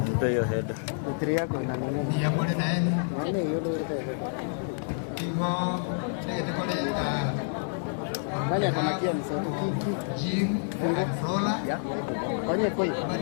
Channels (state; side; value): silent; right; 59 dB below the other